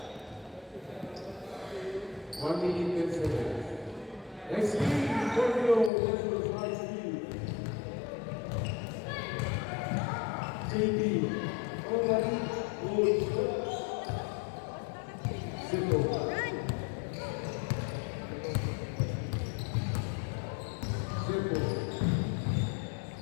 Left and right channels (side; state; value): right; drops out; at 5.9 s